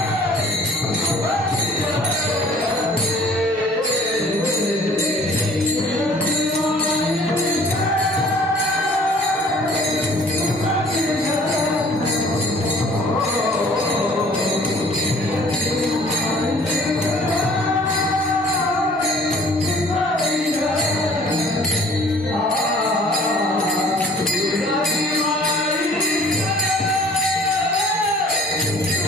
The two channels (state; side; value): normal; both; correlation 0.53